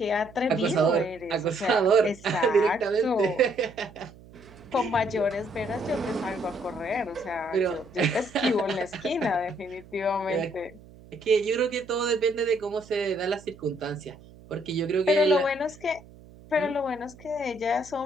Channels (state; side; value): noise; right; hum, 22 dB below the sound